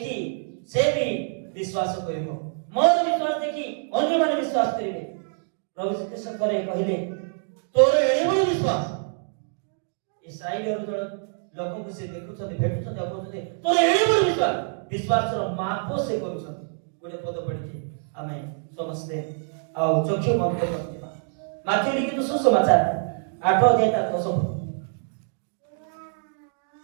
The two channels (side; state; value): left; silent; digital silence